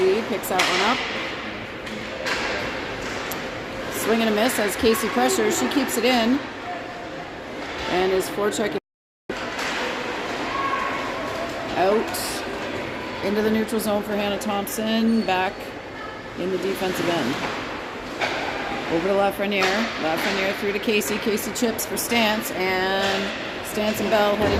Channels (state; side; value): identical; both; correlation 1.00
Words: picks that one up. Swing and a miss as Casey pressures. She keeps it in and is forechecking out into the neutral zone for Hannah Thompson. Back in the defensive end. Over to Lafreniere. Lafreniere through to Casey. Casey chips for Stance, and Stance and Bell